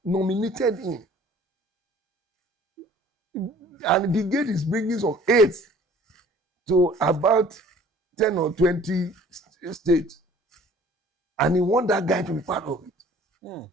nominated him, and Big Gate is bringing some aids to about 10 or 20 states, and he want that guy to be part of it. Mm.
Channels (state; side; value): normal; both; correlation 0.51